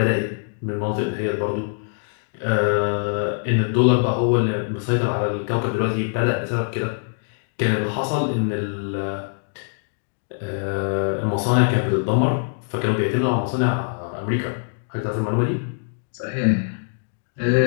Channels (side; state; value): right; silent; digital silence